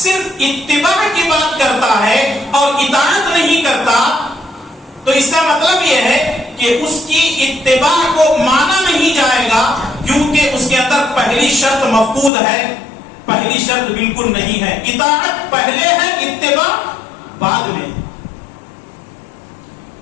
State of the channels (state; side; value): drops out; right; at 12.3 s